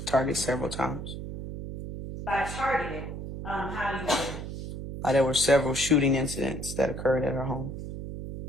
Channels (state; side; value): noise; right; hum, 8 dB below the sound